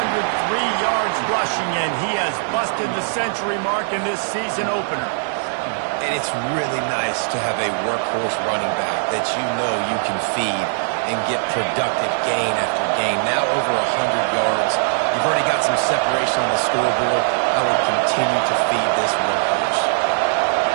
yards rushing, and he has busted the century mark in this season opener. And it's really nice to have a workhorse running back that you know you can feed and get productive gain after gain. Now over 100 yards. You've already got some separation on the scoreboard. I would continue to feed this workhorse.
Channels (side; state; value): left; silent; digital silence